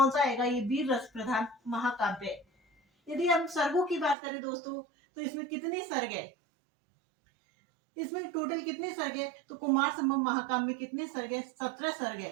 सा आएगा? ये वीर रस प्रधान महाकाव्य है। यदि हम सर्गों की बात करें दोस्तों तो इसमें कितने सर्ग है? इसमें टोटल कितने सर्ग है? तो कुमार संभव महाकाव्य में कितने सर्ग है? 17 सर्ग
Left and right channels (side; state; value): left; drops out; at 4.2 s